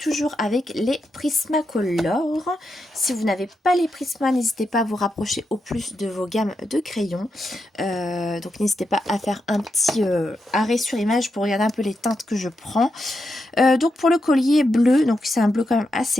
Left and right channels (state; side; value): normal; both; correlation 0.85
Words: avec les Prismacolor. Si vous n'avez pas les Prisma, n'hésitez pas à vous rapprocher au plus de vos gammes de crayons. Donc n'hésitez pas à faire un petit arrêt sur image pour regarder un peu les teintes que je prends. Donc pour le collier bleu, donc c'est un bleu quand même